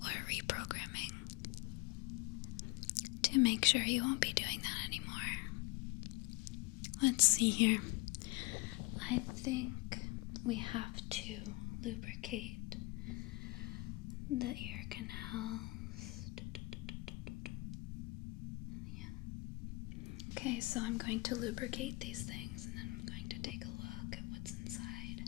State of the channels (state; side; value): quieter; right; 24.6 dB